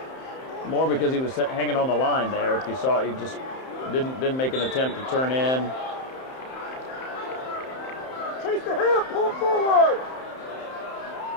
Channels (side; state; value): right; late; 31 ms